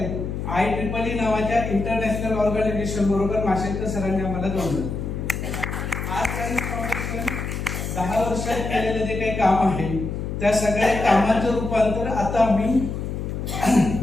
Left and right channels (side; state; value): left; noise; hum, 4 dB below the sound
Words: IEEE नावाच्या इंटरनॅशनल ऑर्गनायझेशन बरोबर माशेलकर सरांनी आम्हाला जोडलं. आज राईस फाउंडेशन 10 वर्षात केलेलं जे काही काम आहे त्या सगळ्या कामाचं रूपांतर आता आम्ही